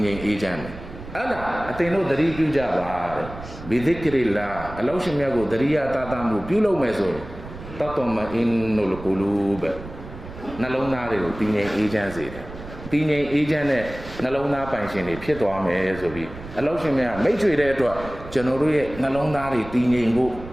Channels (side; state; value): right; noise; rumble, 13 dB below the sound